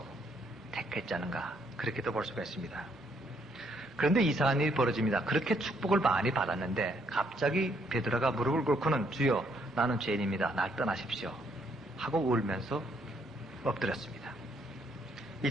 택했지 않은가 그렇게도 볼 수가 있습니다. 그런데 이상한 일이 벌어집니다. 그렇게 축복을 많이 받았는데 갑자기 베드로가 무릎을 꿇고는 주여 나는 죄인입니다. 날 떠나십시오 하고 울면서 엎드렸습니다.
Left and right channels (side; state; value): both; normal; correlation 0.71